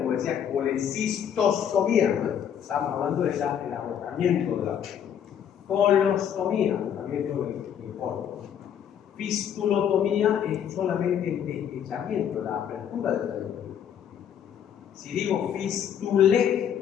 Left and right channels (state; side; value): quieter; right; 8.9 dB